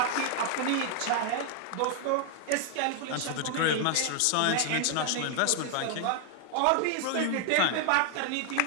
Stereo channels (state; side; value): different; both; correlation 0.00